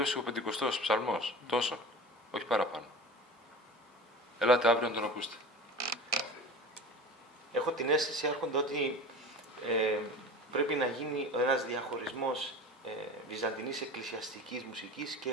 ο Πεντηκοστός ψαλμός. Τόσο. Όχι παραπάνω. Ελάτε αύριο να τον ακούσετε. Έχω την αίσθηση, Άρχοντα, ότι πρέπει να γίνει ένας διαχωρισμός βυζαντινής εκκλησιαστικής μουσικής και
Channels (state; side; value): normal; both; correlation 0.34